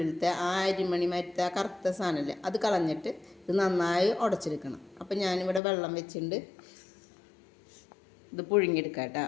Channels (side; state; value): right; drops out; at 5.6 s